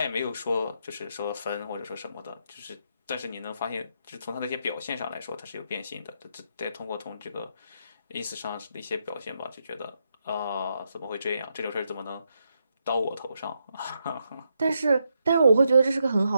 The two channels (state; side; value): inverted; both; correlation -0.81